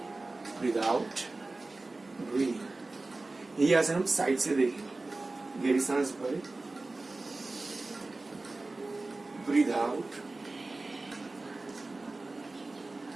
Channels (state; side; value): quieter; left; 3.2 dB